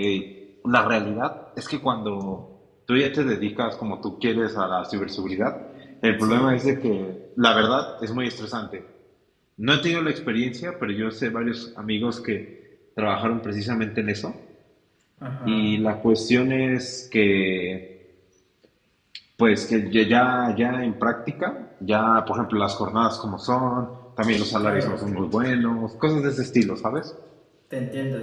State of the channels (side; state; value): both; identical; correlation 1.00